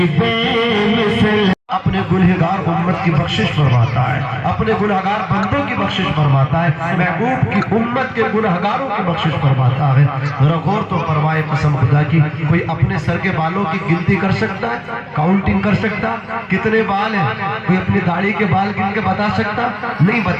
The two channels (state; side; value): identical; both; correlation 1.00